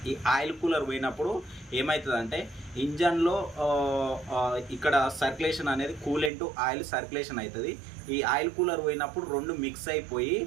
ఈ ఆయిల్ కూలర్ పోయినప్పుడు ఏమవుతుందంటే ఇంజన్లో ఇక్కడ సర్క్యులేషన్ అనేది కూలెంట్ ఆయిల్ సర్క్యులేషన్ అవుతుంది. ఈ ఆయిల్ కూలర్ పోయినప్పుడు రెండు మిక్స్ అయిపోయి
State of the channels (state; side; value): drops out; left; at 6.3 s